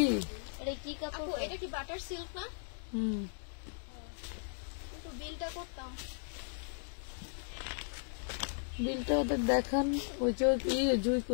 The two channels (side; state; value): right; silent; digital silence